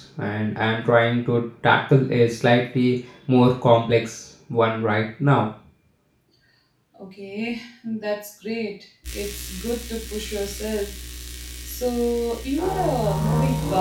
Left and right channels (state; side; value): identical; both; correlation 1.00